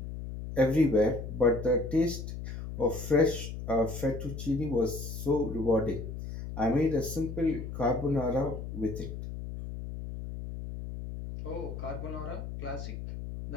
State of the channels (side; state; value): left; noise; hum, 8 dB below the sound